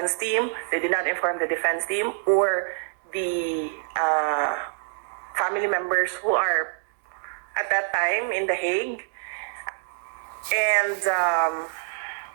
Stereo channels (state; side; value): silent; left; digital silence